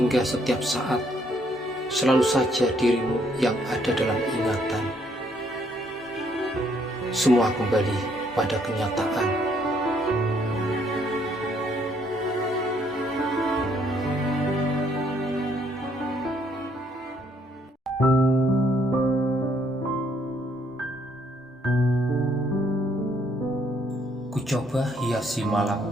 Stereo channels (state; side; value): normal; both; correlation 0.68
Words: setiap saat selalu saja dirimu yang ada dalam ingatan. Semua kembali pada kenyataan. Ku coba hiasi